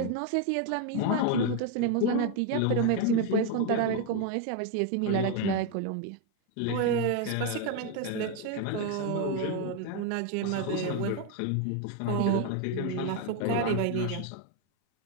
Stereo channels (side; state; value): both; different; correlation 0.01